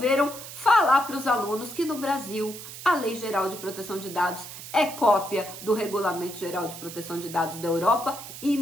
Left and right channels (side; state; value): right; noise; hiss, 12 dB below the sound